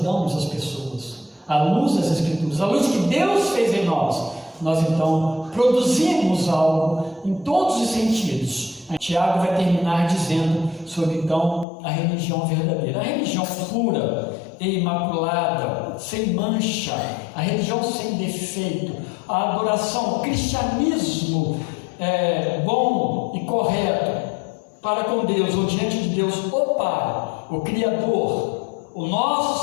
as pessoas, à luz das Escrituras, à luz que Deus fez em nós. Nós então produzimos algo em todos os sentidos. Tiago vai terminar dizendo sobre então a religião verdadeira, a religião pura e imaculada, sem mancha, a religião sem defeito, a adoração, o cristianismo bom e correto para com Deus, ou diante de Deus, o Pai, o Criador, o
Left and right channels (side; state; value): right; drops out; at 11.7 s